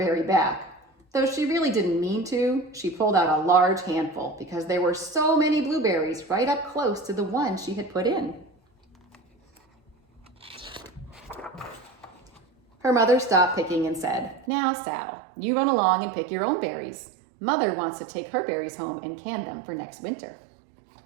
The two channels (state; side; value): drops out; left; at 14.5 s